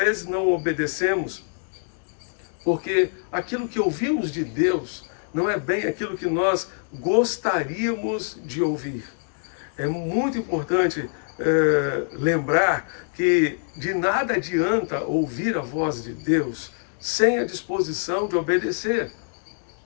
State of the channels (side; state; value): right; silent; digital silence